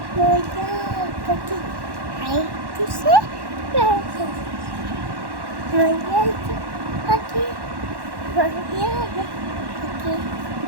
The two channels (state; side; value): late; left; 1.1 ms